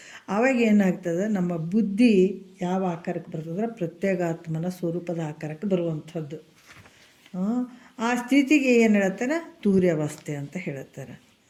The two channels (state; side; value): identical; both; correlation 1.00